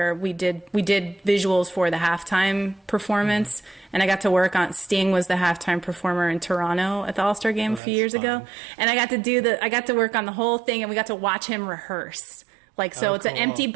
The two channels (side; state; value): left; drops out; at 7.8 s